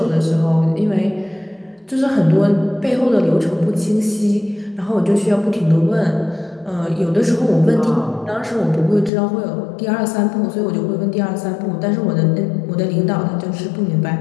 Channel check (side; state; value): right; drops out; at 9.1 s